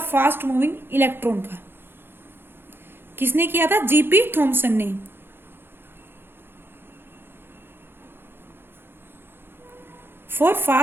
फास्ट मूविंग इलेक्ट्रॉन का। किसने किया था जीपी थॉमसन ने। For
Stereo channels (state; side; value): late; left; 0.10 ms